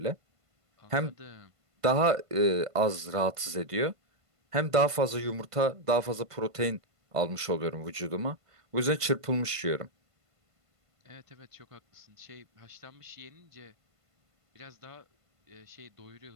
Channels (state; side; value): late; left; 1.5 ms